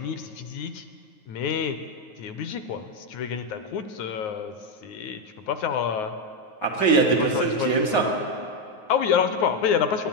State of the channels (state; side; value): late; right; 9.5 ms